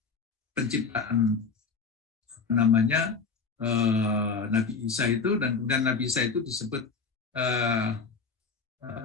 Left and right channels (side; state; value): right; quieter; 5.0 dB